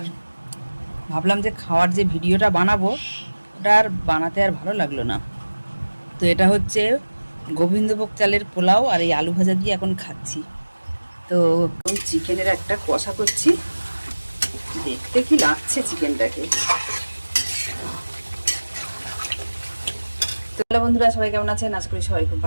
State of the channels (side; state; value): both; inverted; correlation -1.00